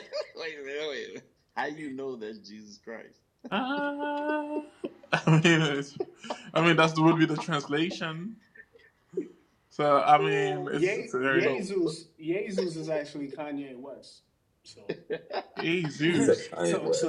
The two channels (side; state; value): both; identical; correlation 1.00